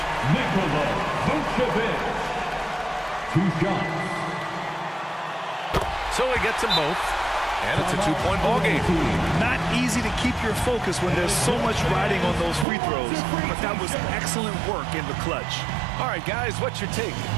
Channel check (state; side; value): drops out; left; at 12.7 s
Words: Nikola Vucevic. 2 shots. So he gets them both, and it's a 2-point ball game. Not easy to keep your focus when there's so much riding on those free throws, but that was excellent work in the clutch. All right, guys, what's your take?